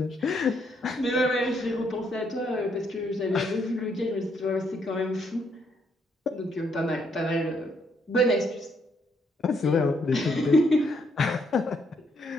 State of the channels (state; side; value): normal; both; correlation 0.73